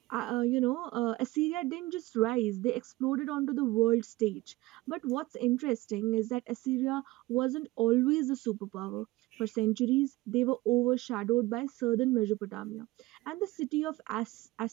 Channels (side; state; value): left; quieter; 19.5 dB